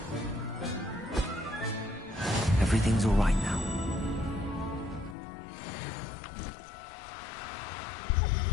Everything's all right now.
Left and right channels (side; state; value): right; drops out; at 5.2 s